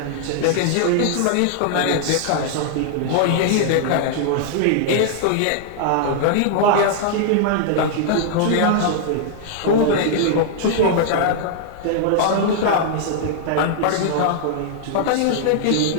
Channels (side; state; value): both; different; correlation -0.01